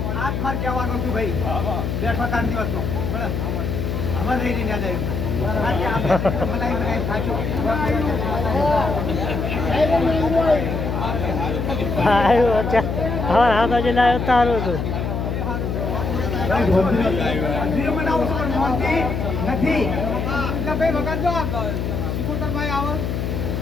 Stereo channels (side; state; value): left; noise; hum, 2 dB below the sound